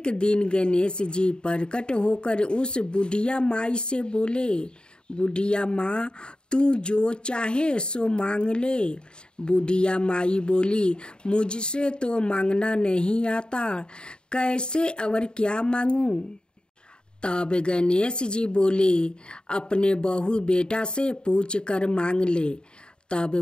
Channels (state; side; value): late; right; 0.050 ms